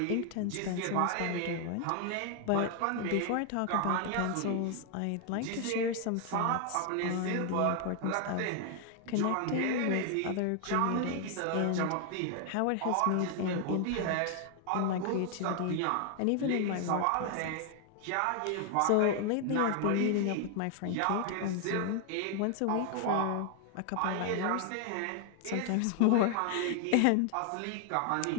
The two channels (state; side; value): different; both; correlation 0.00